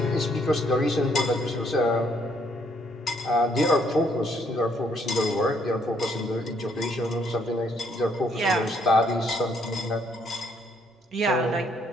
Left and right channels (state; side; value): normal; both; correlation 0.69